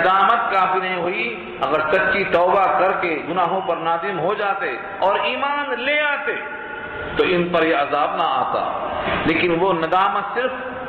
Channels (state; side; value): identical; both; correlation 1.00